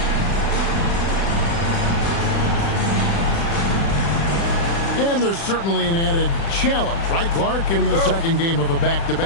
And there's certainly an added challenge, right, Clark, in the second game of a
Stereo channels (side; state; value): right; late; 36 ms